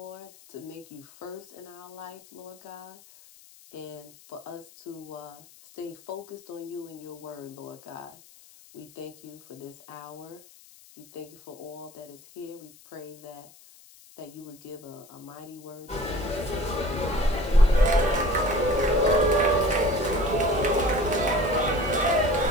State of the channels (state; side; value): noise; left; hiss, 23 dB below the sound